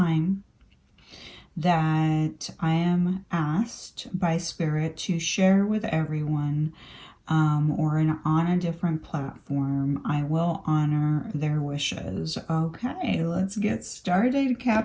that I am asked by Spirit to share with everyone on a different platform, I will honor their wishes. Okay, let's get started.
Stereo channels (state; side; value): identical; both; correlation 1.00